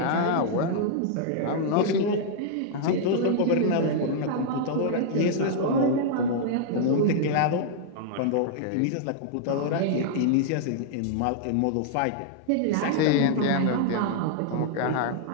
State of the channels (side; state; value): both; different; correlation -0.01